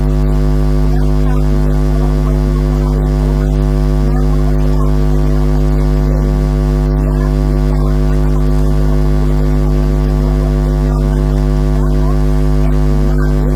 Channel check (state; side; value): identical; both; correlation 1.00